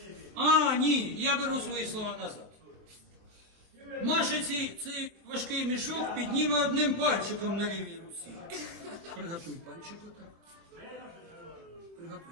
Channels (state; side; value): late; left; 24 ms